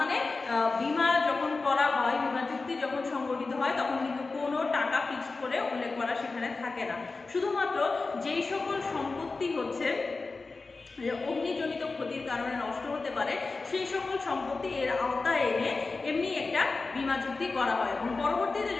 বীমা যখন করা হয়, বীমা চুক্তি যখন সংগঠিত হয়, তখন কিন্তু কোনো টাকা ফিক্সড করে উল্লেখ করা সেখানে থাকে না। শুধুমাত্র যেই সকল সম্পত্তি হচ্ছে অগ্নিজনিত ক্ষতির কারণে নষ্ট হতে পারে সেই সকল সম্পত্তি এর আওতায় এনে এমনি একটা বীমা চুক্তি করা হয়, এবং পরবর্তীতে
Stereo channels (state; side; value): quieter; right; 3.8 dB